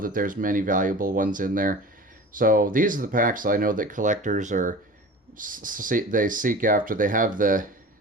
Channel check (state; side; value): normal; both; correlation 0.38